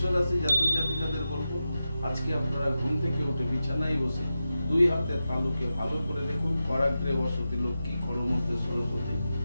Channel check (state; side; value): inverted; both; correlation -0.92